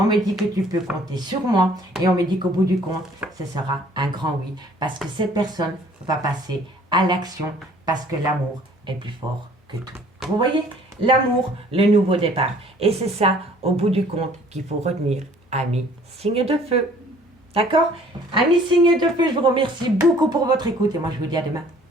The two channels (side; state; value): both; normal; correlation 0.55